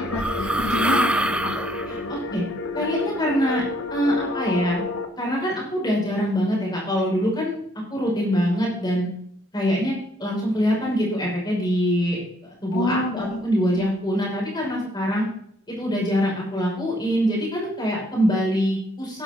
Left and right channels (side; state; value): both; normal; correlation 0.67